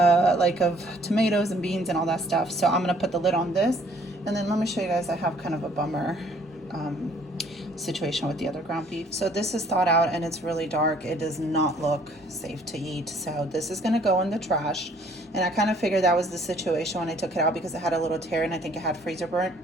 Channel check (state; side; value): normal; both; correlation 0.59